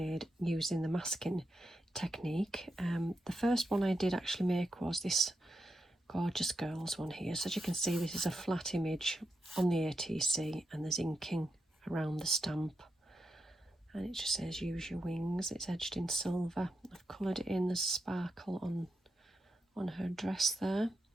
using the masking technique. The first one I did actually make was this Gorgeous Girls one here. So as you can see, this is a flat image on the ATC and there's inking around the stamp. And it just says use your wings. It's edged in silver. I've coloured it in, there's sparkle on her dress there.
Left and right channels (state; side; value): normal; both; correlation 0.85